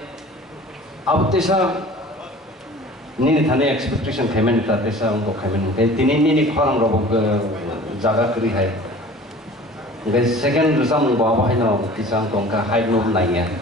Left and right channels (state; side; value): normal; both; correlation 0.44